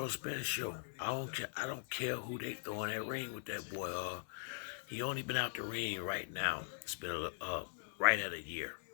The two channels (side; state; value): right; silent; 50 dB below the other